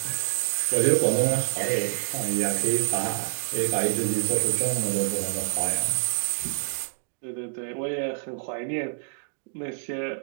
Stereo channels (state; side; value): silent; left; digital silence